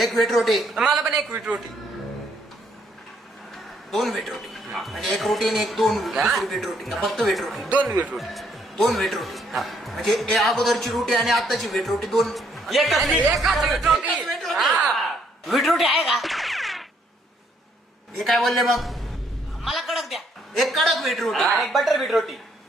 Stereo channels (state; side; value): normal; both; correlation 0.69